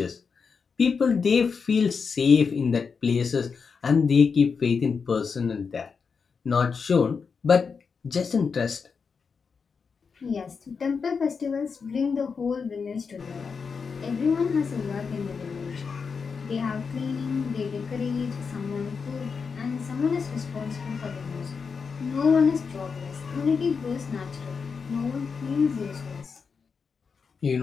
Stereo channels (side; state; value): right; quieter; 5.5 dB